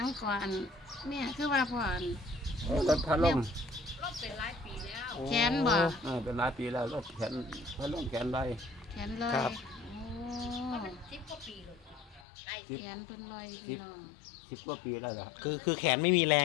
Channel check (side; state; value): right; drops out; at 12.2 s